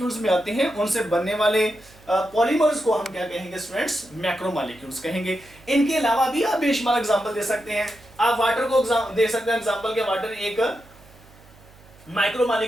में आते हैं, उनसे बनने वाले पॉलीमर्स को हम क्या कहेंगे स्टूडेंट्स? मैक्रोमोलिक्यूल्स कहेंगे। इनके अलावा भी आप बेशुमार एग्जांपल दे सकते हैं। आप वाटर को दे सकते हैं एग्जांपल के, वाटर एक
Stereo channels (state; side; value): noise; right; hum, 25 dB below the sound